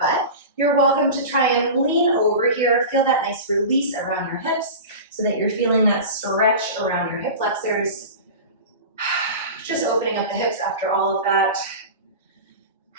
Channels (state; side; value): inverted; both; correlation -0.31